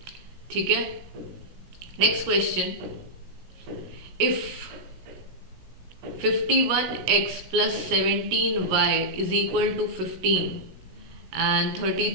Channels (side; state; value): left; late; 16 ms